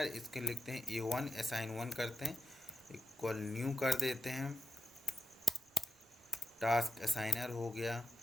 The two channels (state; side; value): normal; both; correlation 0.87